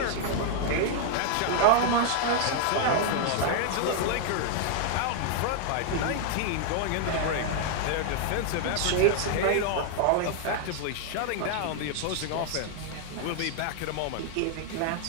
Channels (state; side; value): different; both; correlation 0.00